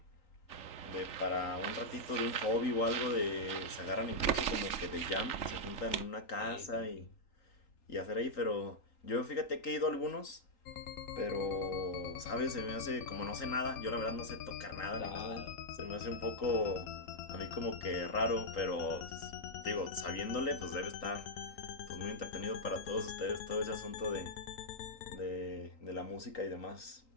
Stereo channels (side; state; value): right; late; 3.9 ms